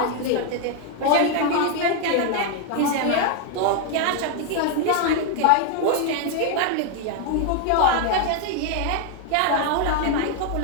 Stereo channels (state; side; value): different; both; correlation 0.00